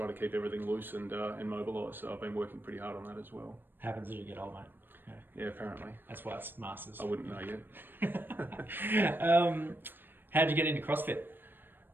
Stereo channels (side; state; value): left; late; 0.095 ms